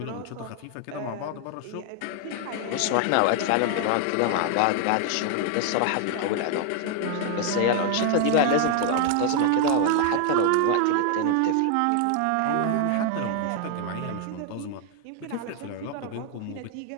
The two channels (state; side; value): different; both; correlation 0.00